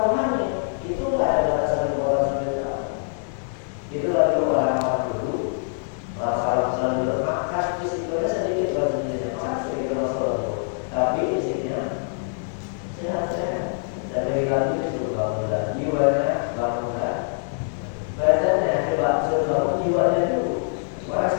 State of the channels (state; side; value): silent; right; digital silence